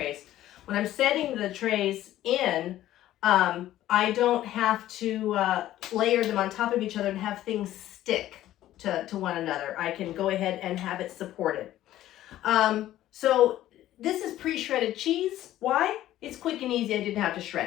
When I'm setting the trays in, I don't have to layer them on top of each other and have things stick to one another. I can go ahead and have it supported. So this is pre-shredded cheese. Why? It's quick and easy. I didn't have to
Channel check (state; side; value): quieter; right; 13.7 dB